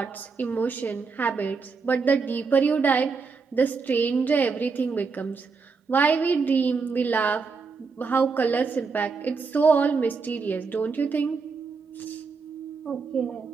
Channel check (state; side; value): quieter; left; 4.9 dB